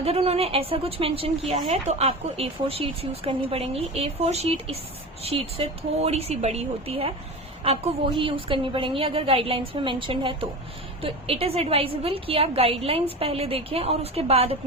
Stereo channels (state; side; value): normal; both; correlation 0.28